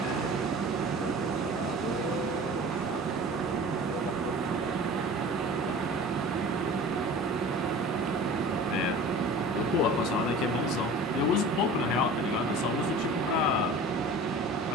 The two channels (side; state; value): both; normal; correlation 0.40